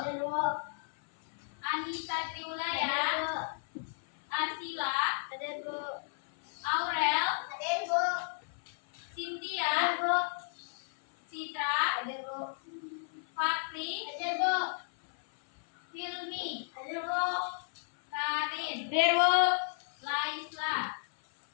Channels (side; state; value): right; silent; 55 dB below the other